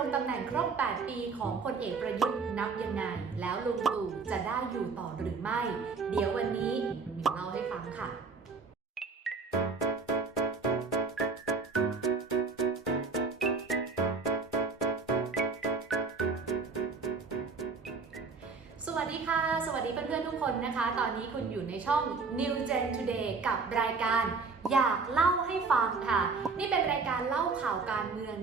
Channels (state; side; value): quieter; left; 4.6 dB